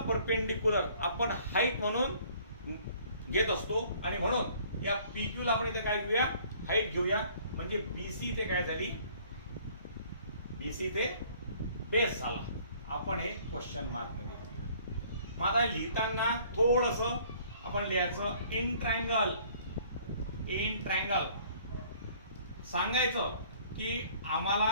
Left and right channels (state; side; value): inverted; both; correlation -0.57